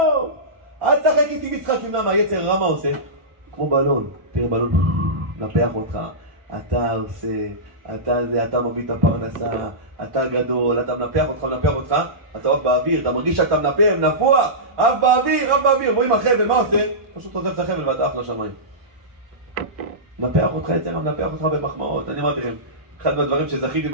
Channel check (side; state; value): left; late; 1.5 ms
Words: אל תשחק איתי משחק. למה היצר רע מה עושה? כמו בלון, תראה בלון, נפח אותך, אתה עושה, אתה מביא את הפרנסה, אתה גדול, אתה מנפח אותך, אתה עף באוויר, אתה מרגיש שאתה נפוח, עף באוויר, רואים החבל, מה עושה? פשוט עוזב את החבל ואתה עף לשמיים. מנפח אותך יצר, מנפח אותך במחמאות. אני אמרתי לכם, אחד מהדברים שזכיתי